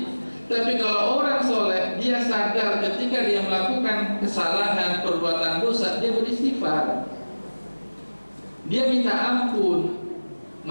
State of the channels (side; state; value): both; inverted; correlation -1.00